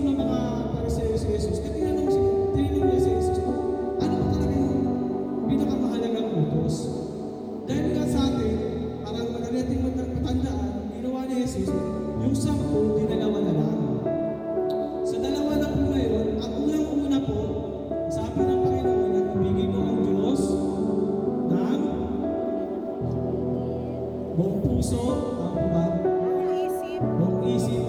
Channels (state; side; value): identical; both; correlation 1.00